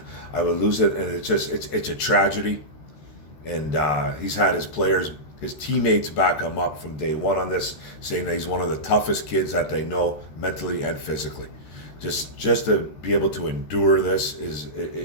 would lose it, and it's a tragedy. And he's had his teammates back him up from day one on this, saying that he's one of the toughest kids that they know, mentally and physically. Just to be able to endure this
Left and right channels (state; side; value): late; right; 13 ms